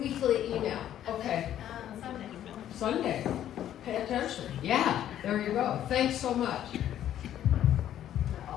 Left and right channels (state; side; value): quieter; right; 11.3 dB